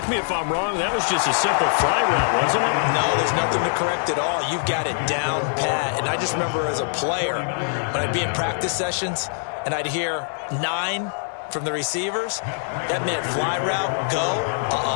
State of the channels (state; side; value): silent; right; digital silence